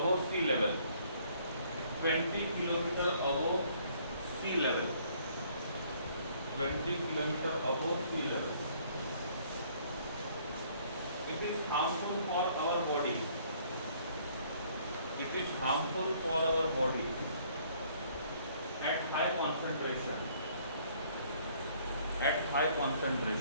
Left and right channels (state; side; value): inverted; both; correlation -0.62